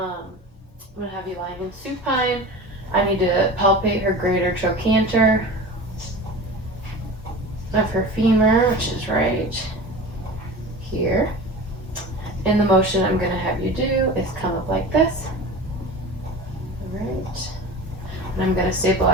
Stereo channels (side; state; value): both; normal; correlation 0.34